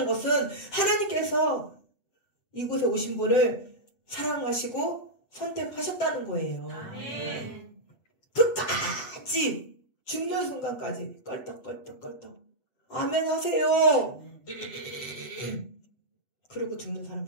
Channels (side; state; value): right; late; 7.7 ms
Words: 것은 하나님께서 이곳에 오신 분을 사랑하시고 선택하셨다는 거예요. 아멘. 끝까지 죽는 순간까지 껄떡껄떡 아멘 하세요. 그리고 죽는